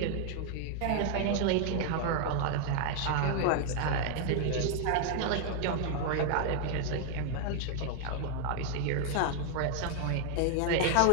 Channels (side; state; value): both; different; correlation 0.00